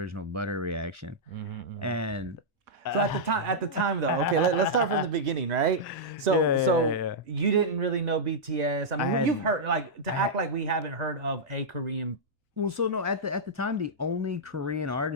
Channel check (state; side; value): late; left; 1.4 ms